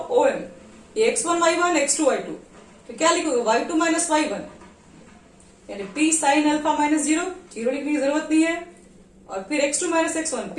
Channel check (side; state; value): both; identical; correlation 1.00